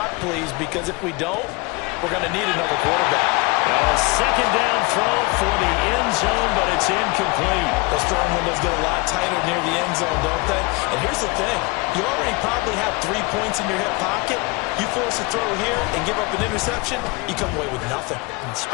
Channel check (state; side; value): quieter; right; 25.8 dB